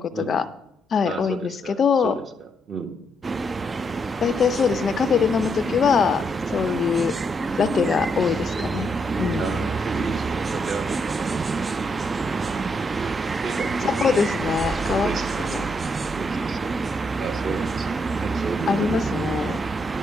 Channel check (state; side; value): normal; both; correlation 0.77